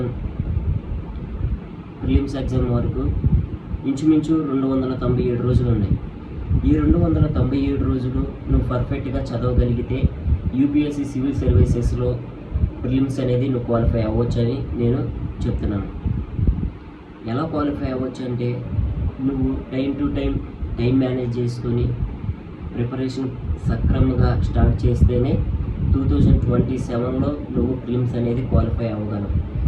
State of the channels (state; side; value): identical; both; correlation 1.00